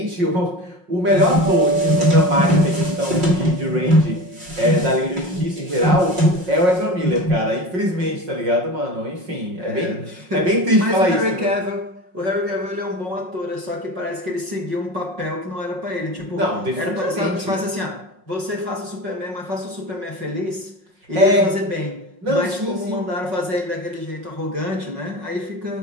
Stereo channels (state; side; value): late; left; 5.4 ms